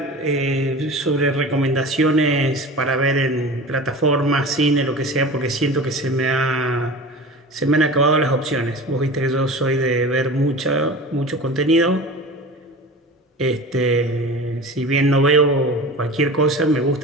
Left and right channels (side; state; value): both; normal; correlation 0.34